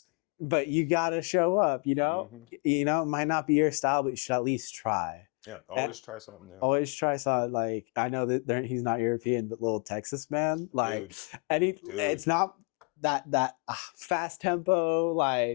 but you gotta show up, you know. Mhm. You know, it might not be your style, but you should at least try. Yeah, always try something new. Always try something. Like, I know that he's not European, but Little Texas Man, like, Dude, it's not that fast tempo,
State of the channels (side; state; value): right; quieter; 33.3 dB